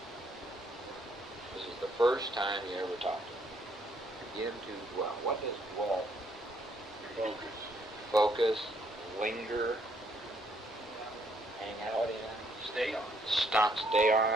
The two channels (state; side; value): normal; both; correlation 0.69